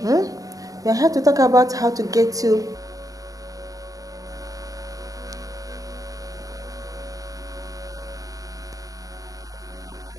We are here to talk about how to get you. Well, I'm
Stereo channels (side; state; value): left; late; 0.17 ms